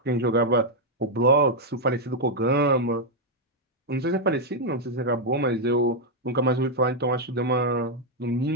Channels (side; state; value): both; normal; correlation -0.01